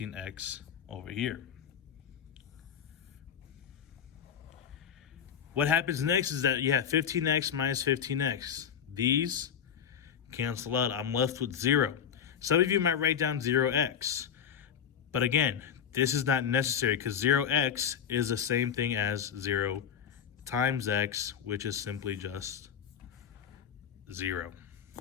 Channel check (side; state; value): right; quieter; 8.3 dB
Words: over here. What happens next is that you have 15x minus 15x. These cancel out. I'm left with 0. Some of you might write down 0x. But again, this is not necessary because 0x is the same thing as 0 times x, which is simply just 0.